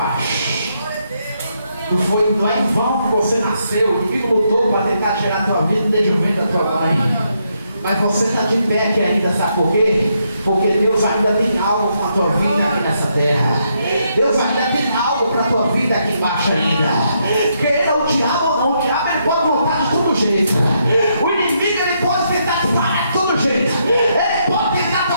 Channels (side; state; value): both; inverted; correlation -0.77